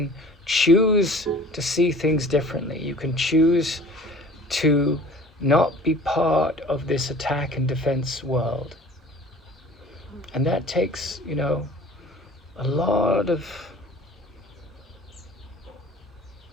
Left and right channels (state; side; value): normal; both; correlation 0.46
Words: choose to see things differently. You can choose to not be part of this attack and defense world. And that takes, a lot of